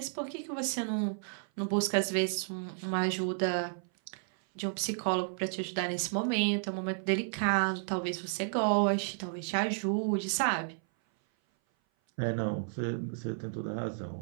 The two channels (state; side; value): silent; left; 56 dB below the other